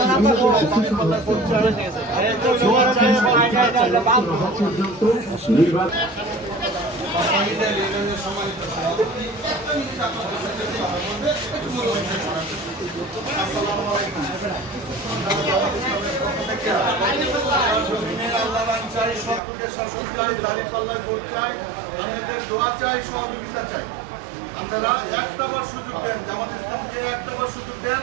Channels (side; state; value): left; drops out; at 19.4 s